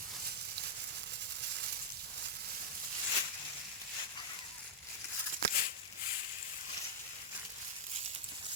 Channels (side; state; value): both; normal; correlation -0.03